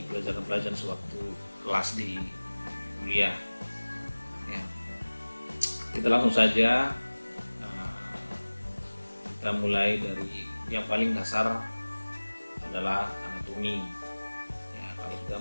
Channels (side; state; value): both; inverted; correlation -1.00